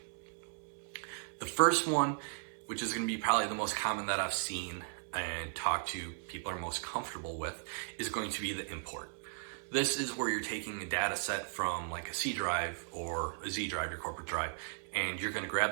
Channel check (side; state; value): left; silent; 53 dB below the other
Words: The first one, which is going to be probably the most common that I've seen and talked to people are most comfortable with, is going to be the import. This is where you're taking a data set from like a C drive or a Z drive, your corporate drive, and you're going to